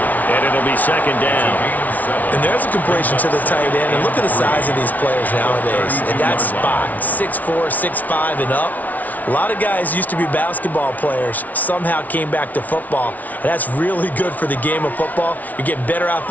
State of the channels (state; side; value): late; right; 0.075 ms